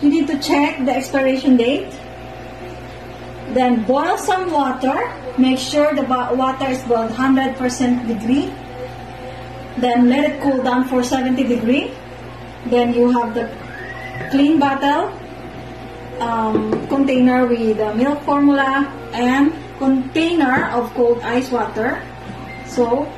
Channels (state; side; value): identical; both; correlation 1.00